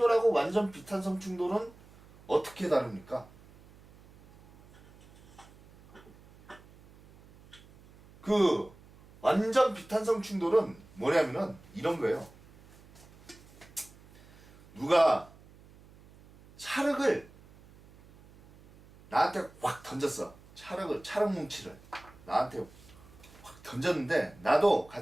완전 비탄성 충돌은 어떻게 다릅니까? 그 완전 비탄성 충돌은 뭐냐면은 이런 거예요. 누가 찰흙을 나한테 확 던졌어. 찰흙 뭉치를 나한테 확 던졌는데 나도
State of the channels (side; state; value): right; noise; hum, 24 dB below the sound